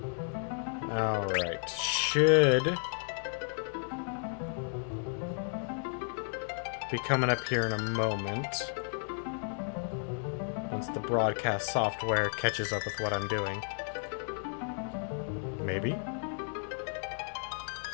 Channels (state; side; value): silent; right; 56 dB below the other